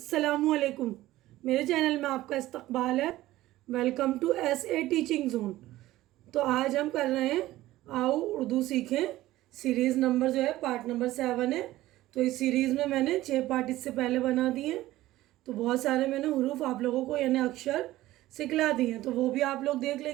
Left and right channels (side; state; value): left; quieter; 16.1 dB